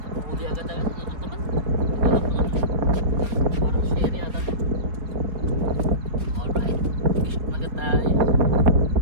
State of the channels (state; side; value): late; left; 4.1 ms